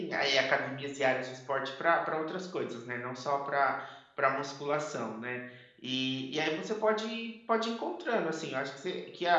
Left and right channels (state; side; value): identical; both; correlation 1.00